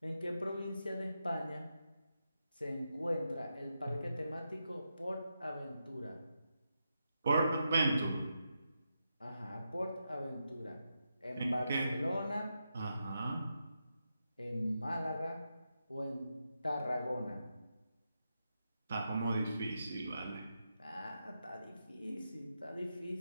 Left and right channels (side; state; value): both; inverted; correlation -0.86